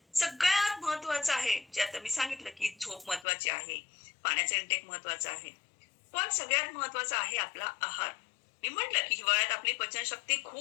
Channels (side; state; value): right; drops out; at 3.2 s